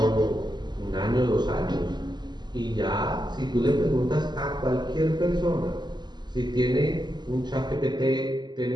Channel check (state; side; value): late; left; 0.21 ms